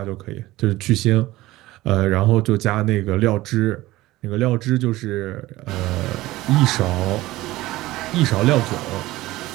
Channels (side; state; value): left; quieter; 17.7 dB